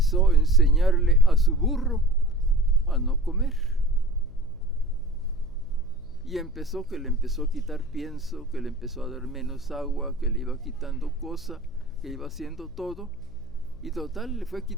enseñarle a su burro a no comer. Y que le empezó a quitar pienso, que le empezó a dar menos agua, que le iba quitando cosa, que iba haciendo todo. Y total, le fue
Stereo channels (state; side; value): noise; left; hum, 19 dB below the sound